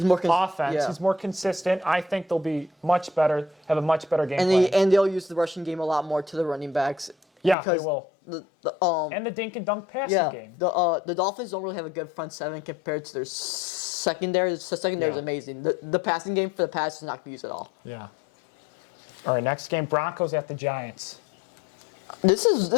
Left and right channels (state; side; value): drops out; right; at 7.6 s